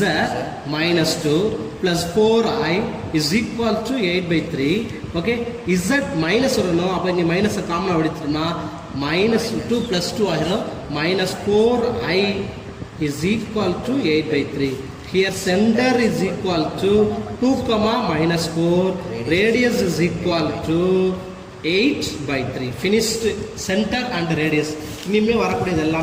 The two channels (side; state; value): both; identical; correlation 1.00